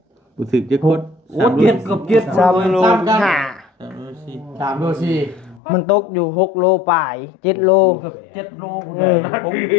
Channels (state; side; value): drops out; right; at 5.6 s